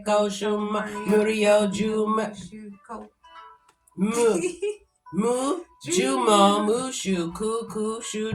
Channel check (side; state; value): both; identical; correlation 1.00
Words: Shuma, Murio, Juma, Jumo, Mushu, Kuku,